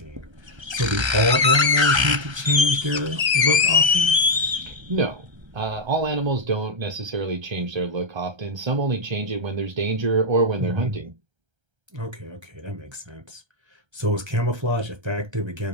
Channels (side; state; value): left; late; 1.3 ms